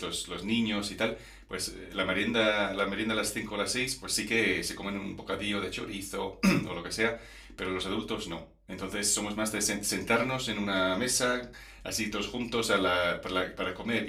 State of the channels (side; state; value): both; identical; correlation 1.00